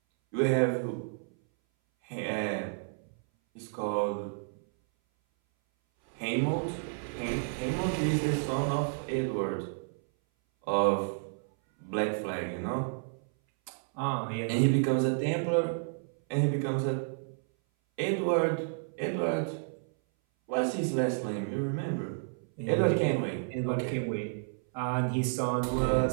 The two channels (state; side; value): silent; left; 57 dB below the other